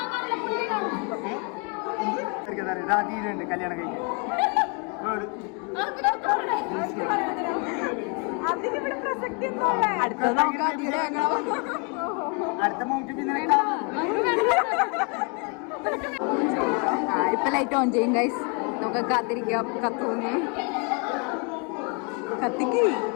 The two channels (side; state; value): right; quieter; 34.5 dB